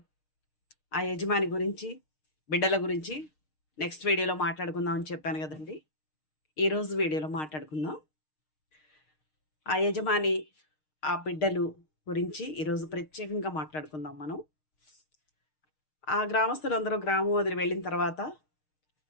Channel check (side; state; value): right; late; 6.5 ms